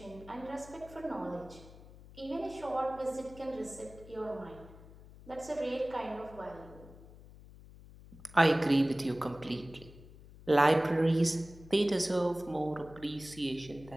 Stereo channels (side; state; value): left; noise; hum, 19 dB below the sound